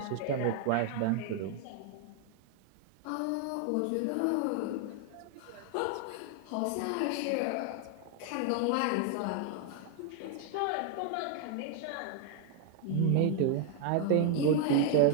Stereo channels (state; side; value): different; both; correlation 0.00